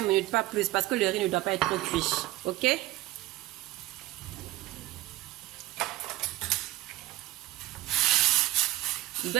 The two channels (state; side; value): quieter; left; 16.7 dB